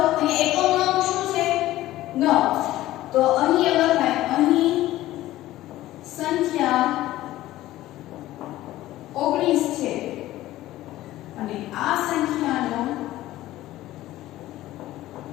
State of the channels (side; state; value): right; quieter; 15.5 dB